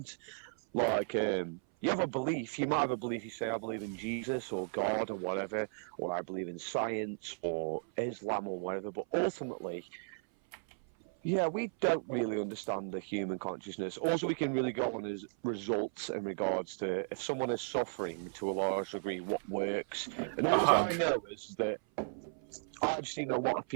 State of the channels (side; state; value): left; silent; 54 dB below the other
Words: Like, you have a belief, you might have a belief, you say, I believe in Jesus, or God, or whatever, or I believe in science, or Islam, or whatever, but ultimately, yeah, we don't really understand the human consciousness. All we can really go on is results in regards to if someone is suffering to a large degree, what works. And all I know is that I've seen a lot of